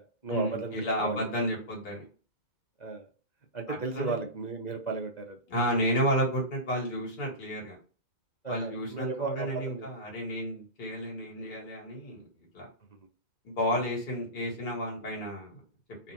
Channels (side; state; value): right; late; 2.0 ms